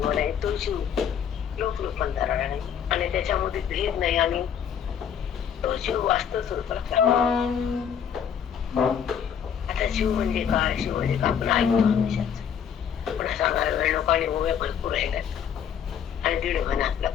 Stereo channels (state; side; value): quieter; right; 8.1 dB